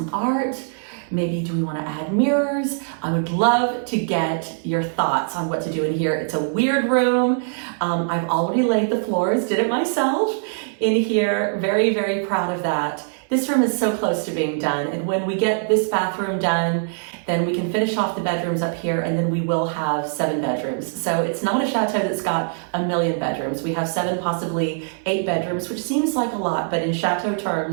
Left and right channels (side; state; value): left; silent; digital silence